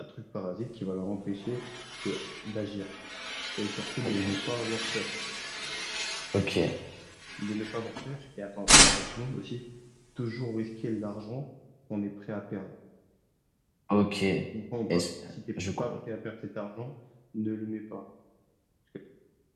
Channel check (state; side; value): identical; both; correlation 1.00